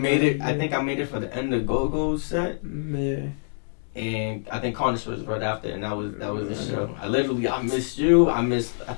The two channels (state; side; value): silent; right; digital silence